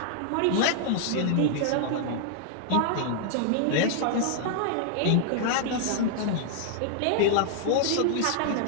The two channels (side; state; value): both; different; correlation -0.01